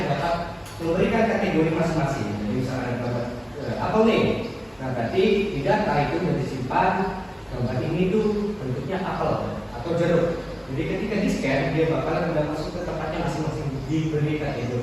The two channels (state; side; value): identical; both; correlation 1.00